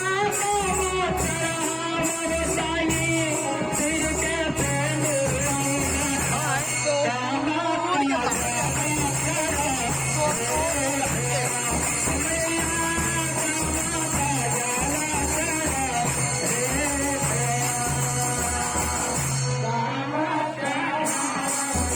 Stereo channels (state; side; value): identical; both; correlation 1.00